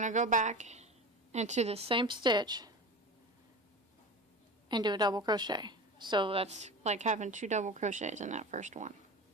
to go back into the same stitch and do a double crochet. So that's like having 2 double crochets in that first one,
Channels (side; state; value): both; normal; correlation 0.31